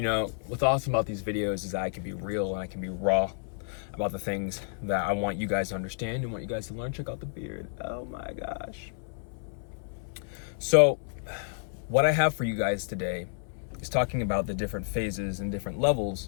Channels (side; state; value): right; silent; 58 dB below the other